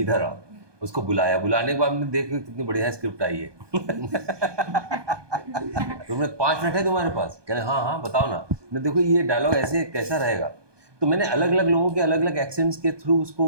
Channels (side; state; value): left; late; 1.2 ms